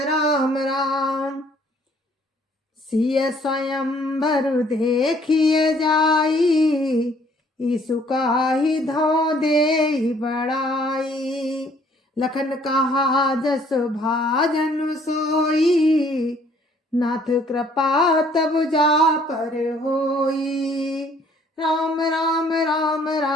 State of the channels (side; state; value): both; normal; correlation 0.61